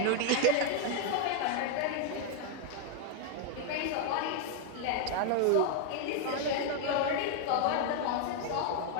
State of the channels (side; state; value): both; different; correlation 0.00